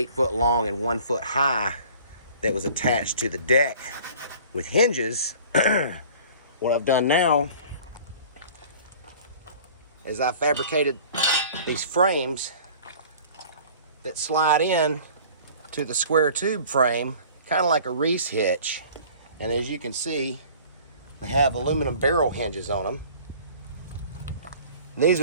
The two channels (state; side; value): inverted; both; correlation -0.47